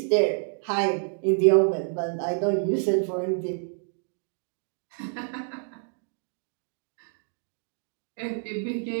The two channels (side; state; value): left; silent; 59 dB below the other